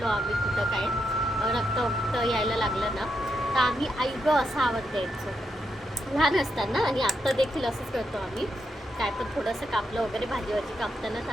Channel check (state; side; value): normal; both; correlation 0.82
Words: आम्ही कुठं काय, रक्त यायला लागलं ना, तर आम्ही आई गं असा आवाज द्यायचो लहान असताना. आणि आत्ता देखील असंच करतो आम्ही, काय पण थोडंसं कापलं वगैरे भाजी कापताना, तर